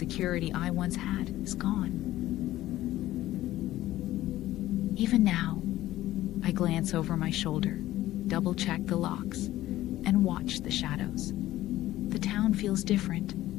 I once had is gone. Even now, I glance over my shoulder, double-check the locks, and watch the shadows. The town feels different,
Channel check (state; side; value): quieter; right; 15.0 dB